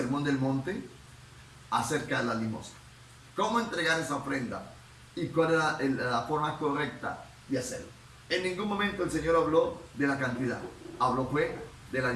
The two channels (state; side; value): identical; both; correlation 1.00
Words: del Monte, acerca de la limosna. ¿Cómo entregar esa ofrenda? ¿Y cuál era la forma correcta de hacerlo? En ningún momento el Señor habló de la cantidad, habló fue de la